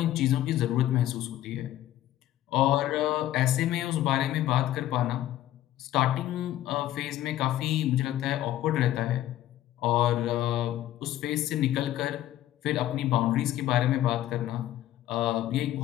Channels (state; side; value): quieter; right; 13.5 dB